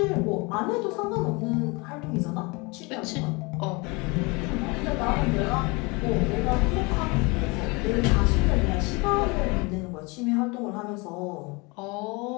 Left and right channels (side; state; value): right; quieter; 27.4 dB